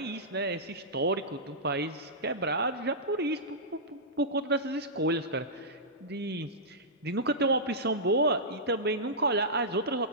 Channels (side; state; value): both; normal; correlation -0.14